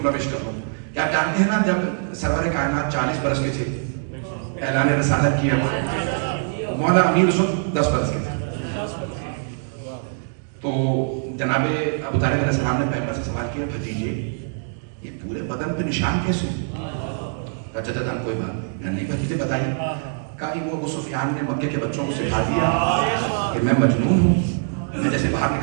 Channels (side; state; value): left; silent; digital silence